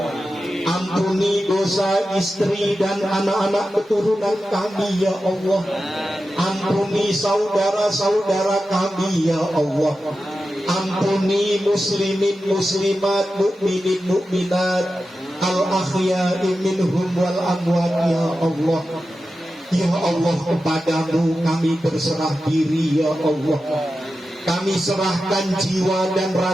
Ampuni dosa istri dan anak-anak keturunan kami ya Allah. Ampuni saudara-saudara kami ya Allah. Ampuni muslimin muslimat, mukminin mukminat, al-akhya'i minhum wal amwat ya Allah. Ya Allah, kepadamu kami berserah diri ya Allah. Kami serahkan jiwa dan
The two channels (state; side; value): normal; both; correlation 0.92